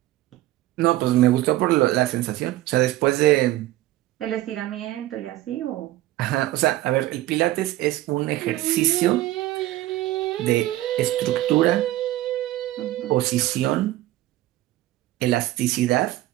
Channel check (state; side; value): quieter; left; 15.7 dB